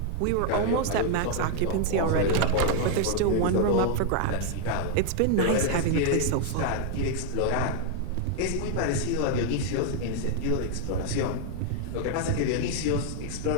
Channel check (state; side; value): different; both; correlation 0.00